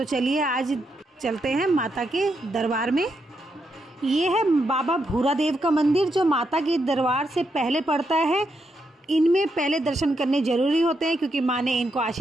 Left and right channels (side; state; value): both; normal; correlation 0.81